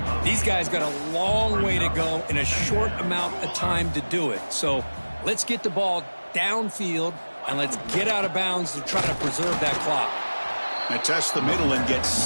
these guys got a long way to go in a short amount of time to do it. So let's get the ball downfield and let's get out of bounds to try to preserve that clock. And test the middle and get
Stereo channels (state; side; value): inverted; both; correlation -1.00